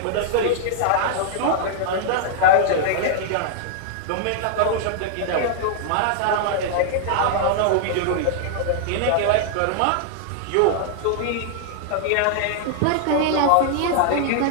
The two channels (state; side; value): different; both; correlation -0.01